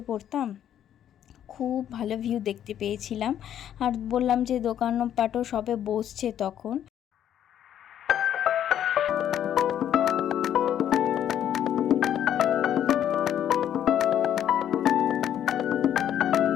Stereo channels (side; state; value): right; quieter; 10.3 dB